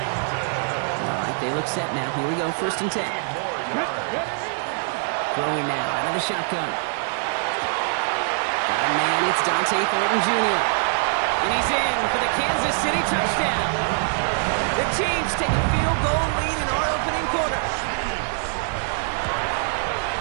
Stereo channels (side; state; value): left; silent; digital silence